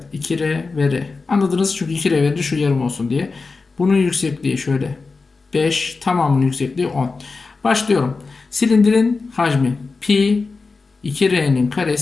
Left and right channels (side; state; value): right; quieter; 4.1 dB